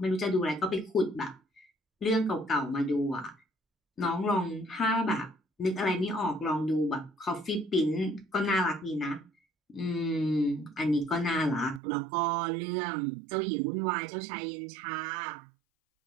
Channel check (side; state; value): left; drops out; at 11.8 s